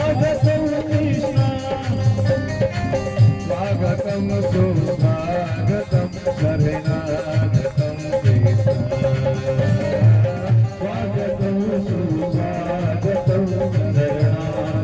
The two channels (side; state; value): both; identical; correlation 1.00